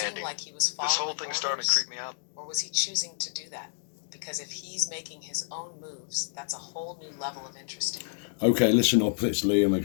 seem like he was following This whole thing's starting to orders? creep me out. Or was he choosing to do that? Because if he's making his own moves, that's a whole new level of interesting. Okay, listen up. It's Liam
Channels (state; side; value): silent; right; digital silence